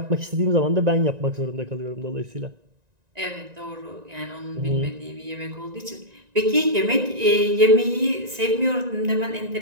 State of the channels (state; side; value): late; left; 1.9 ms